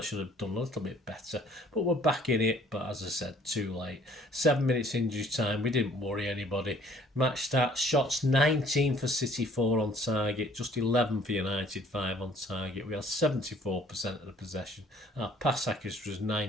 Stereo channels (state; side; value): normal; both; correlation 0.57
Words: should have done a little bit better, but we're back in it, but as I said, too late. 7 minutes injury time, we didn't worry anybody. Match stats: shots 19 for City, 4 on target, just 11 for United, 5 on target. We had 74% of the possession. Our pass accuracy was